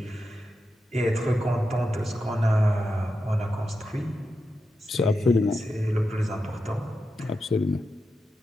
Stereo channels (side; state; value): both; normal; correlation 0.89